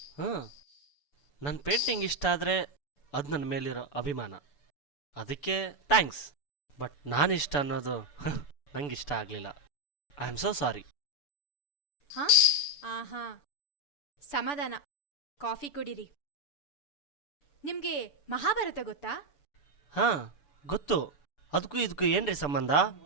ಹಾಂ, ನನ್ನ ಪೇಂಟಿಂಗ್ ಇಷ್ಟ ಆದರೆ ಅದು ನನ್ನ ಮೇಲಿರೋ ಅಭಿಮಾನ. ಅದಕ್ಕೆ ಥ್ಯಾಂಕ್ಸ್. ಬಟ್ ನಾನಿಷ್ಟ ಅನ್ನೋದು ನಂಗೆ ಇಷ್ಟ ಆಗಲಿಲ್ಲ. I am so sorry. ಹಾ ಆಹಾ, ಸಮಾಧಾನ. ಕಾಫಿ ಕುಡೀರಿ. ನಿಮ್ಗೆ ಮಹಾಭಾರತ ಗೊತ್ತಾ? ಹಾಂ ಗೊತ್ತು. ಅದಕ್ಕೂ ಇದಕ್ಕೂ ಏನ್ರಿ ಸಂಬಂಧ?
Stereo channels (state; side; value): late; right; 6.9 ms